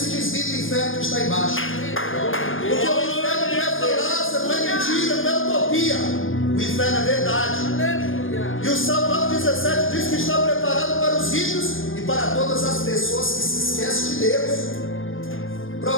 desvie do inferno que está embaixo. Porque o inferno não é falácia, não é mentira, não é utopia. O inferno é verdade. E o Salmo 9:17 diz que está preparado para os ímpios e para todas as pessoas que se esquecem de Deus.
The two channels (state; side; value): late; right; 0.59 ms